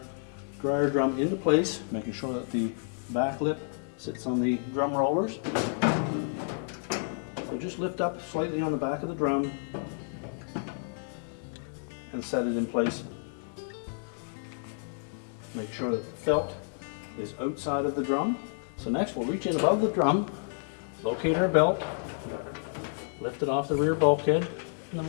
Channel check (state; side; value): silent; right; digital silence